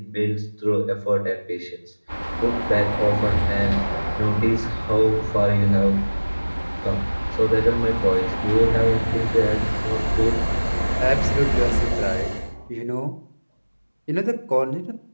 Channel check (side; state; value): both; inverted; correlation -1.00